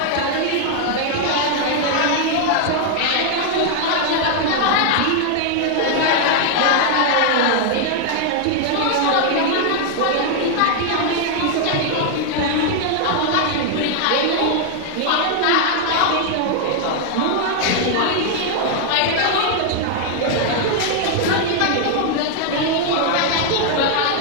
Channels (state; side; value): different; both; correlation 0.00